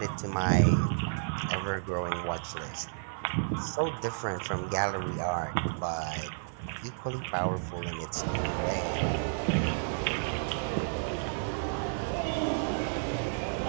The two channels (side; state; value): left; silent; 57 dB below the other